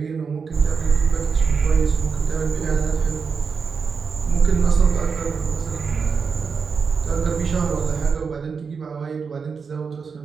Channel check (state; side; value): quieter; left; 5.5 dB